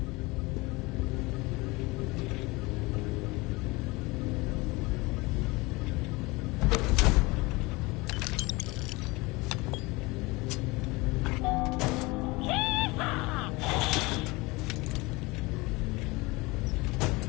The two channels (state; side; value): quieter; right; 23.6 dB